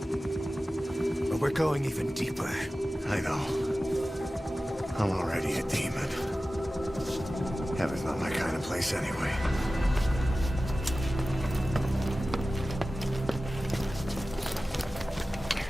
But we're going even deeper. I know. I'm already a demon. Heaven's not my kind of place anyway.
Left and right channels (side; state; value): both; normal; correlation 0.96